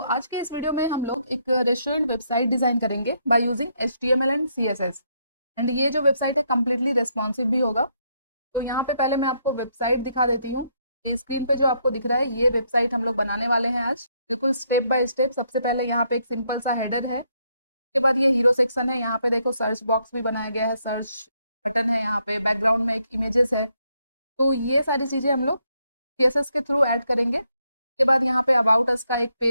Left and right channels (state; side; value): inverted; both; correlation -0.75